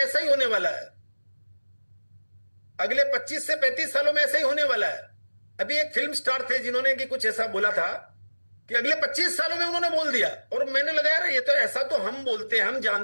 ही होने वाला है। अगले 25 से 35 सालों में ऐसा ही होने वाला है। अभी एक फिल्म स्टार थे जिन्होंने कि कुछ ऐसा बोला था कि अगले 25 सालों में उन्होंने बोल दिया, और मैंने लगा यार ये तो ऐसा तो हम बोलते हैं, हम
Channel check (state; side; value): inverted; both; correlation -1.00